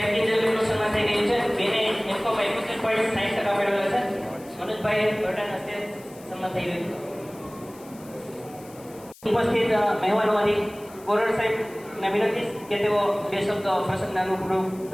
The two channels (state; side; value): noise; left; hiss, 23 dB below the sound